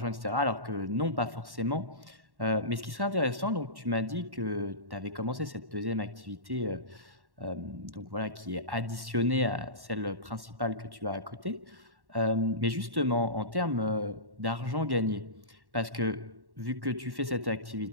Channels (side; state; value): left; late; 1.1 ms